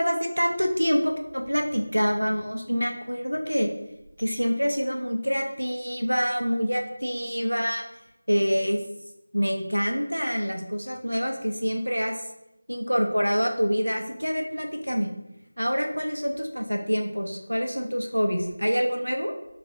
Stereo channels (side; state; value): both; inverted; correlation -0.99